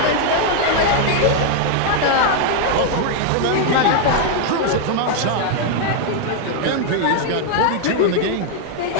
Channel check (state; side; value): different; both; correlation 0.00